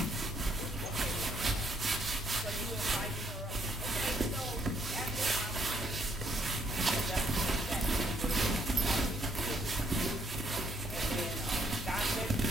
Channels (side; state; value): both; normal; correlation 0.70